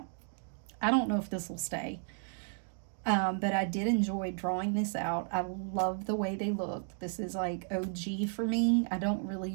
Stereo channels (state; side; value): silent; left; 55 dB below the other